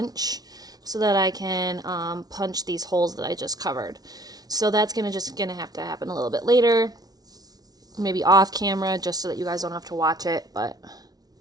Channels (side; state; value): left; late; 0.19 ms